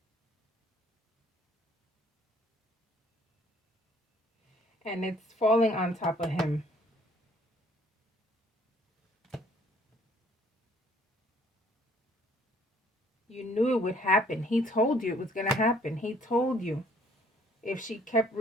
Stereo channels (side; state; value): both; normal; correlation 0.61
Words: And it's falling on top of him. You knew it would happen. He told you it was going to happen. He told you if she kept